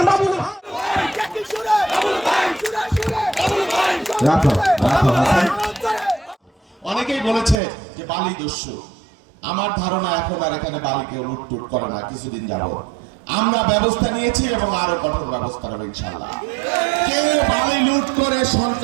বাবু। অনেকেই বলেছে যে বালি দস্যু। আমার ধারণা এখন আর এখানে বালি কেউ লুটটুট করে না। কিছুদিন যাবত আমরা ব্যবস্থা নিয়েছি এবং আরো কঠোর ব্যবস্থা নেব ইনশাআল্লাহ। কেউ বালি লুট করে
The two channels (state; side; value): drops out; left; at 7.6 s